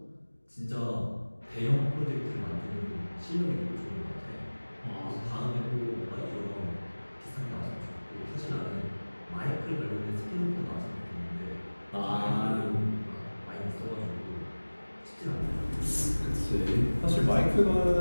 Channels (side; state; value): both; inverted; correlation -1.00